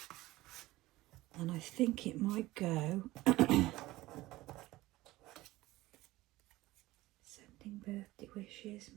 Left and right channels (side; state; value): left; quieter; 18.1 dB